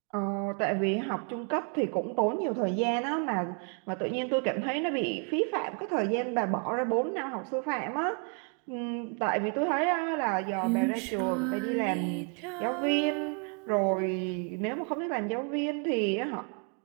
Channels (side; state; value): left; quieter; 39.2 dB